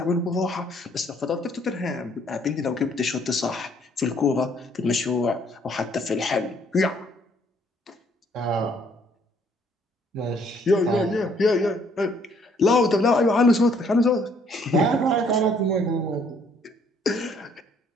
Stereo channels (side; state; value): both; normal; correlation 0.64